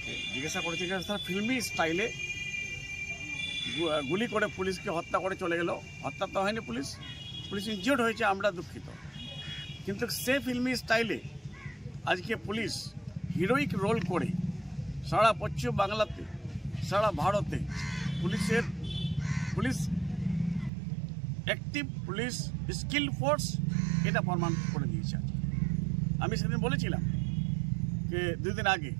জিজ্ঞাসা করেছিলেন, তারা ফিল্মি স্টাইলে গুলি করে পুলিশকে হত্যা করে চলে গেল। হত্যা তো হয়নি, পুলিশ ইনজিওর্ড হয়েছে, আমরা দুঃখিত, কিন্তু সে ফিল্মি স্টাইলে আজকে পুলিশ হিরোইক রোল করে সারা পশ্চিম বাংলাতে, সারা ভারতে police active, police skill force, এটা প্রমাণ করে দিয়েছে। আমি সেদিন বলেছিলাম যে 2 দিন আগে,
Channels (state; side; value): drops out; left; at 20.7 s